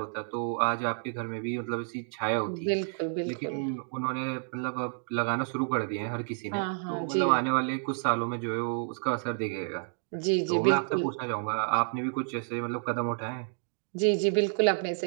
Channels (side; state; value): left; silent; digital silence